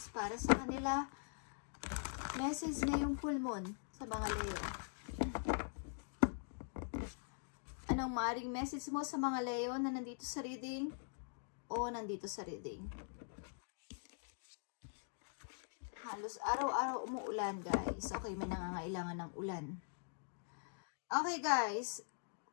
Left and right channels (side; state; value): right; silent; digital silence